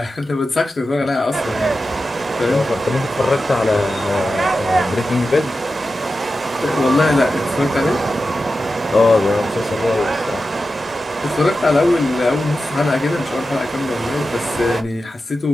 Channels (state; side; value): normal; both; correlation 0.92